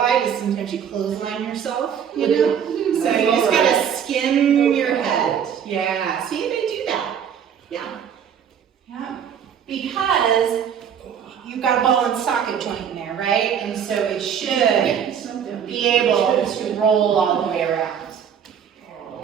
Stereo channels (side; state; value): left; quieter; 8.2 dB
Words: is sometimes you clothesline yourself, you know? So you just gotta skim your head. Yeah, see, they do that. Yeah. Yeah. Because you've got a ball and socket joint in there, right? And so it should be able to roll all the way